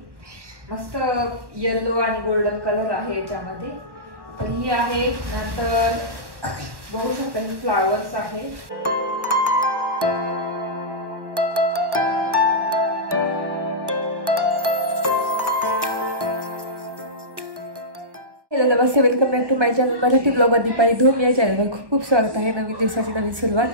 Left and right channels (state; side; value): late; left; 1.1 ms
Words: मस्त येलो आणि गोल्डन कलर आहे याच्यामध्ये. तर ही आहे. नंतर बघू शकता ही फ्लावर्स आहे. हॅलो नमस्ते, welcome back to my channel Marathi blog Deepali Dhoom. या चॅनलवर खूप खूप स्वागत आहे. नवीन दिवसाची नवीन सुरुवात.